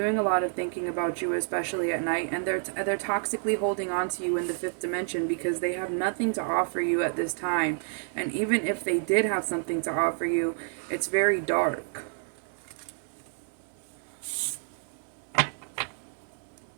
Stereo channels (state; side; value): silent; left; 57 dB below the other